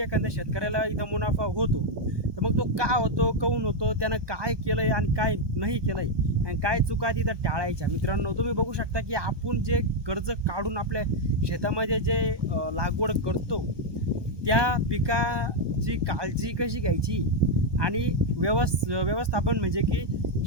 एखाद्या शेतकऱ्याला इथं मुनाफा होतो. तर मग तो का होतो, काहून होतो, त्यानं काय केलंय आणि काय नाही केलंय आणि काय चुका तिथं टाळायच्या. मित्रांनो, तुम्ही बघू शकता की आपण जे कर्ज काढून आपल्या शेतामध्ये जे लागवड करतो त्या पिकाची काळजी कशी घ्यायची आणि व्यवस्थापन म्हणजे की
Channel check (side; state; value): left; late; 1.2 ms